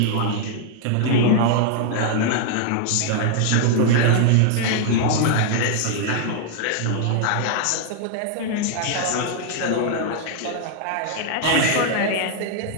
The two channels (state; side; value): different; both; correlation 0.00